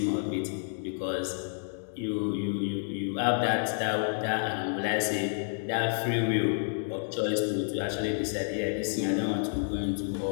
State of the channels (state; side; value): silent; right; digital silence